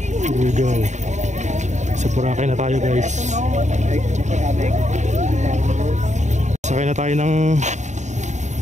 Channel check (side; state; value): left; late; 0.34 ms